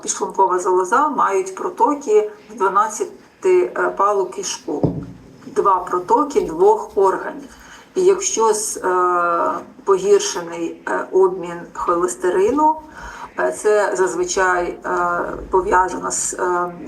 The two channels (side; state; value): both; identical; correlation 1.00